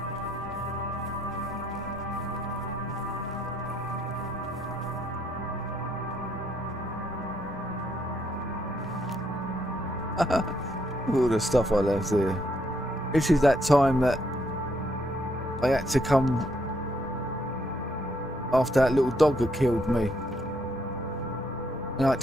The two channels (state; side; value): normal; both; correlation 0.73